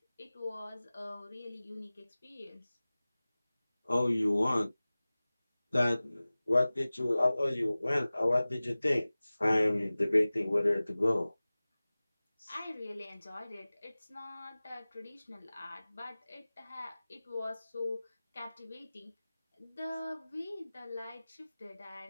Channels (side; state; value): both; inverted; correlation -0.98